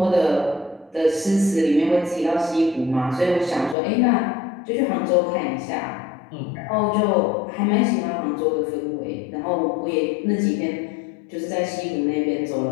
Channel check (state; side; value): drops out; right; at 3.8 s